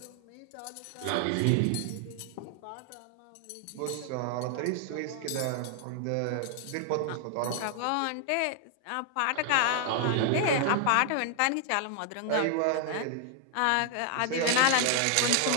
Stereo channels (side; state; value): both; different; correlation 0.00